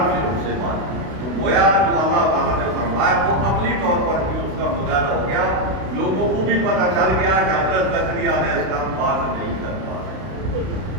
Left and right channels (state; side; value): late; left; 32 ms